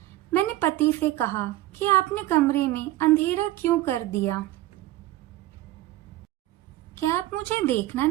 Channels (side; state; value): left; quieter; 15.8 dB